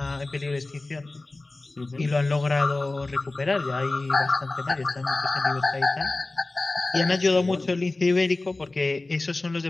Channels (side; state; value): right; quieter; 3.1 dB